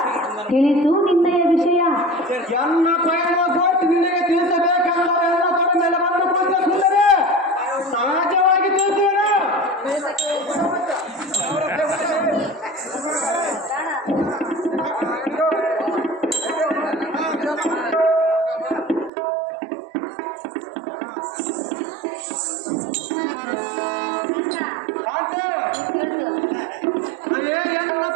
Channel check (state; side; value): drops out; left; at 19.1 s